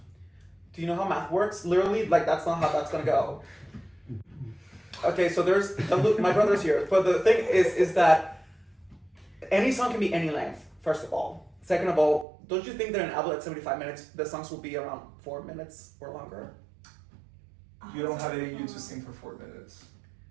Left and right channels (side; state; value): left; drops out; at 12.2 s